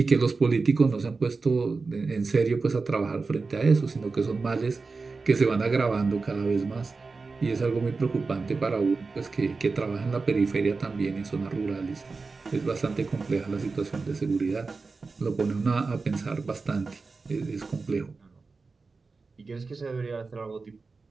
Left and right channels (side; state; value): left; quieter; 4.2 dB